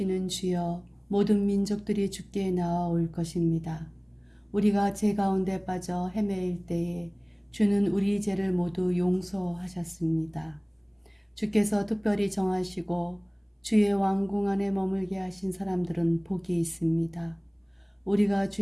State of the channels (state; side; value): identical; both; correlation 1.00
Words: 주여, 모든 민족들이 주께 나아올 것입니다. 우리가 죄 가운데 빠져 헤매일 때에 주는 우리 죄를 모두 용서하셨습니다. 주께서 특별히 정하시고 주의 왕궁 안에 머물게 하신 사람들은 복이 있습니다. 우리가